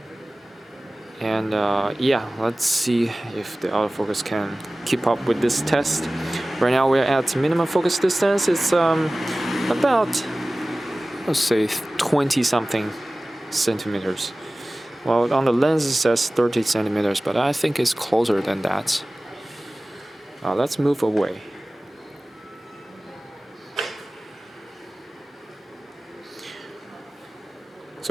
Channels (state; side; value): normal; both; correlation 0.98